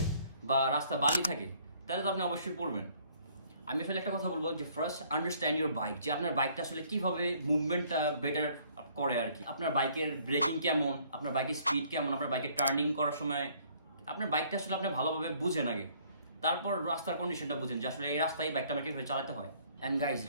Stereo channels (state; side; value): inverted; both; correlation -0.61